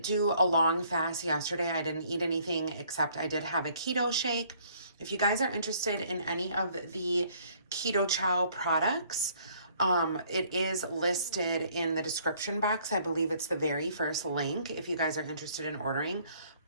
do a long fast yesterday. I didn't eat anything except I did have a keto shake. If you guys are interested in any of the keto CHOW products, it is listed in the description box. I believe it's the very first link if you guys are interested in ordering.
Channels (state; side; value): inverted; both; correlation -0.61